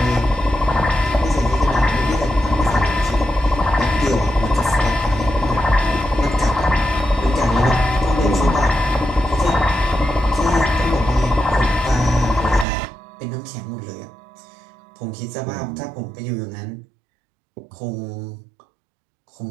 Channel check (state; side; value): drops out; left; at 12.7 s